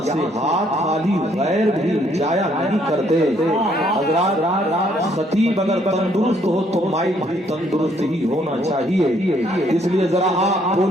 سے ہاتھ خالی غیر بھی جایا نہیں کرتے۔ حضرات خطیب اگر تندرست ہو تو مائک بھی تندرست ہی ہونا چاہیے، اس لیے ذرا آپ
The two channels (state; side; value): normal; both; correlation 0.67